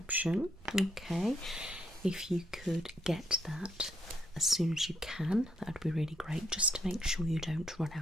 Okay. If you could get that as soon as you can, that would be really great, just to make sure you don't run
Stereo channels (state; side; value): noise; right; rumble, 23 dB below the sound